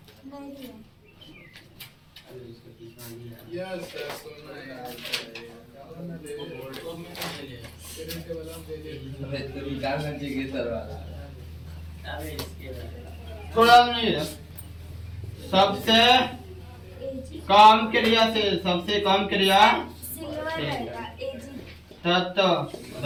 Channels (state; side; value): identical; both; correlation 1.00